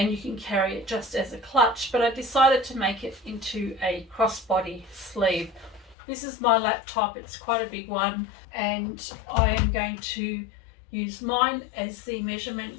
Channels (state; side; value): drops out; right; at 6.0 s